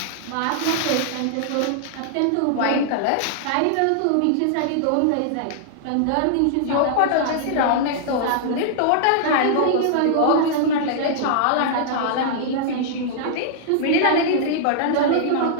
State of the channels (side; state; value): both; different; correlation -0.01